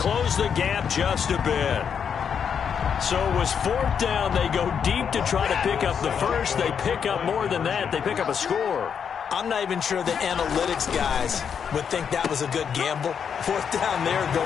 the gap just a bit. So it was 4th down. They go deep to try to pick up the first. They pick up more than that. They pick up a score. I'm not even sure the analytics guys would think that was a good gamble. 4th down there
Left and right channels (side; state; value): right; quieter; 7.3 dB